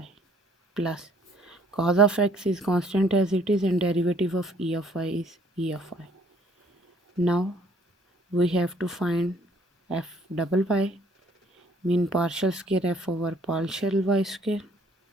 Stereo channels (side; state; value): both; normal; correlation 0.61